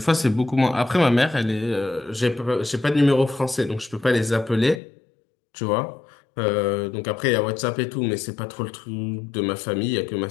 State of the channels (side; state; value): right; drops out; at 4.8 s